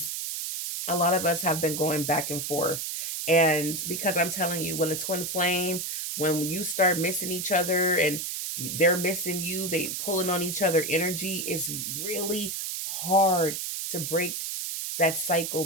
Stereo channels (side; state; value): right; noise; hiss, 4 dB below the sound